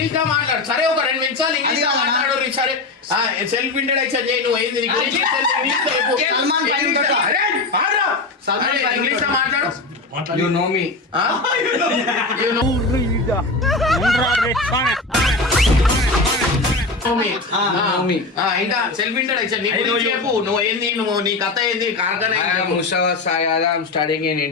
లో మాట్లాడు. సరే ఒక 2 నిమిషాలు ఇంగ్లీష్ లో మాట్లాడు. సరే సెల్ఫ్ ఇంట్రడక్షన్ చేయి. నువ్వు ఏంది ఇంగ్లీష్ లో మాట్లాడు. You know me. You know me. ఇంకా సెల్ఫ్ ఇంట్రడక్షన్ నీ గురించి చెప్పు. నువ్వు ఏంది, నువ్వు నీ కథ ఏంది? కార్ఖానా Mustafa Sayada. I'm studying in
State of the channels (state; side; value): quieter; right; 3.4 dB